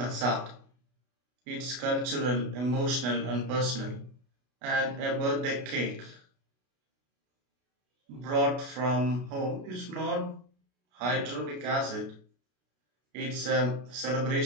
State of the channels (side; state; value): left; late; 32 ms